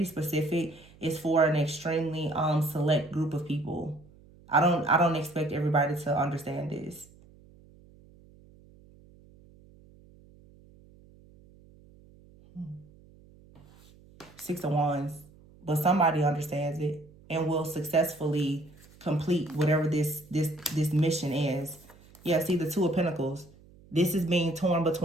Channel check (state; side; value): noise; right; hum, 25 dB below the sound